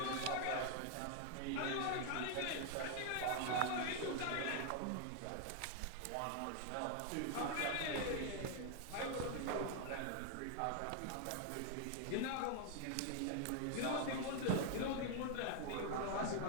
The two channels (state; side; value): different; both; correlation 0.00